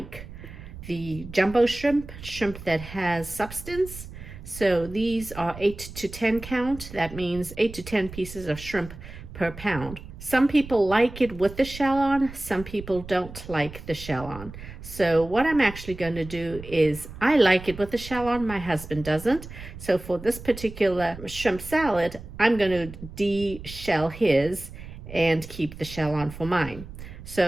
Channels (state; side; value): noise; right; rumble, 13 dB below the sound